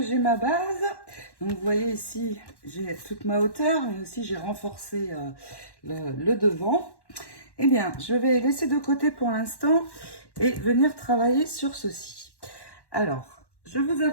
j'ai ma base, donc vous voyez ici, j'ai toute ma hauteur, mais aussi j'ai renforcé le devant. Eh bien, je vais laisser de côté pour l'instant et venir travailler sur ceci. Alors, je vous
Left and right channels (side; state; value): right; late; 1.1 ms